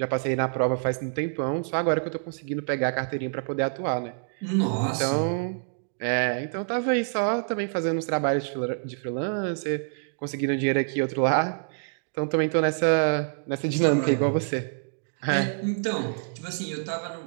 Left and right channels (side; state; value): left; silent; digital silence